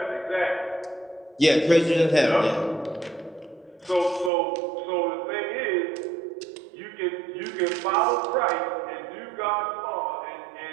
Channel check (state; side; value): drops out; left; at 4.3 s